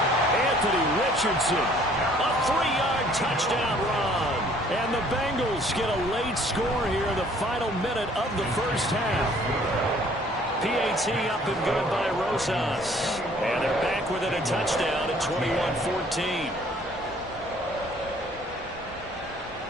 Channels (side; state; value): both; normal; correlation 0.58